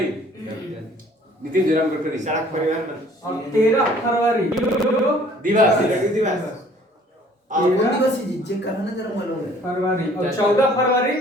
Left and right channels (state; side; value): normal; both; correlation 0.55